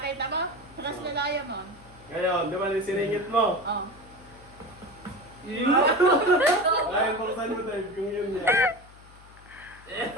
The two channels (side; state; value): left; noise; hum, 23 dB below the sound